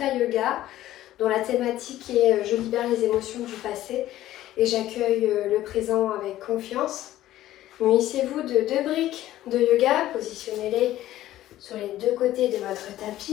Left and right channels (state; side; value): quieter; right; 14.1 dB